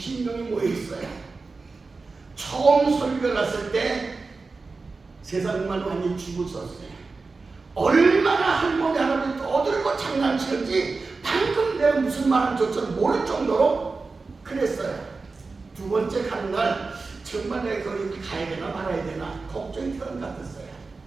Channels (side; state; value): left; quieter; 4.0 dB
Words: 모여 있어요. 처음 설교 갔을 때 세상만 많이 죽었었어요. 얼마나 할머니 할아버지 떠들고 장난치는지 방금 내가 무슨 말하는지조차 모를 정도로 그랬어요. 두 번째 가는 날 정말 내가 거기 가야 되나 말아야 되나 걱정이 되는 것 같았어요.